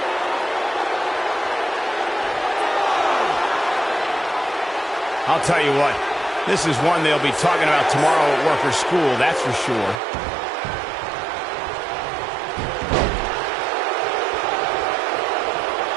I'll tell you what, this is one they'll be talking about tomorrow at work or school, that's for sure.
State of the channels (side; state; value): left; drops out; at 10.0 s